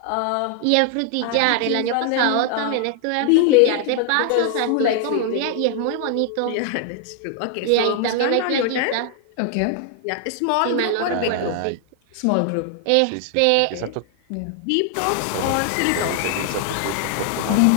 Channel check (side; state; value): both; different; correlation 0.00